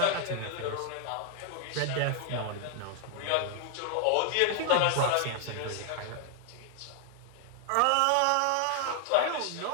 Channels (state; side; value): different; both; correlation 0.00